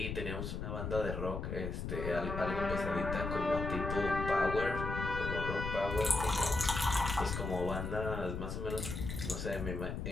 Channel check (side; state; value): left; noise; rumble, 4 dB below the sound